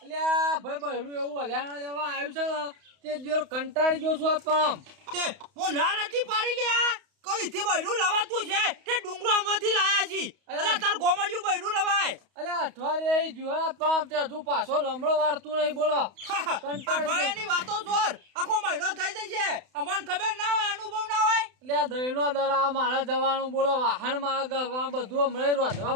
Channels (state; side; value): late; left; 31 ms